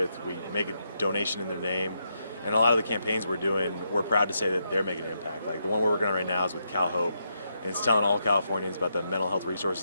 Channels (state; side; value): inverted; both; correlation -0.81